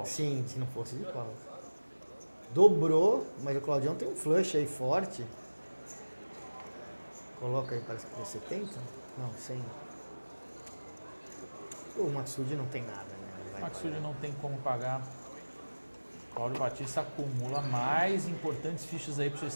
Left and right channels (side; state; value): both; inverted; correlation -1.00